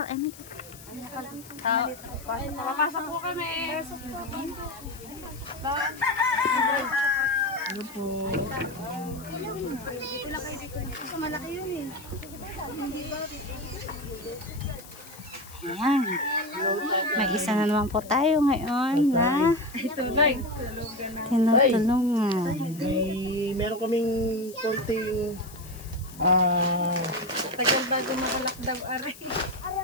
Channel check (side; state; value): left; noise; hiss, 18 dB below the sound